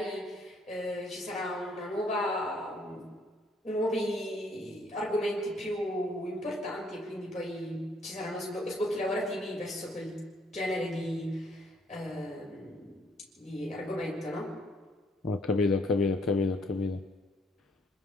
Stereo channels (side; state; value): both; normal; correlation 0.66